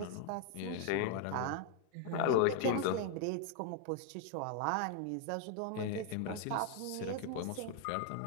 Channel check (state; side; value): different; both; correlation 0.00